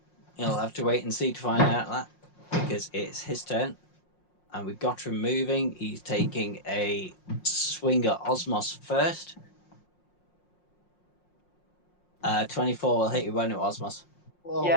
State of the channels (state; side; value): late; right; 5.6 ms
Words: you'll have to wait and see to find out that because it's his turn. And we've got him moving. He's taking a swing at Osmos first. 24 will hit you, won't it, Osmos? Oh,